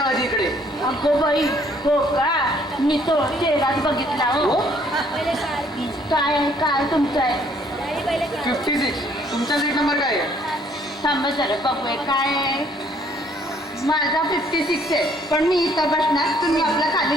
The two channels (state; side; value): normal; both; correlation 0.63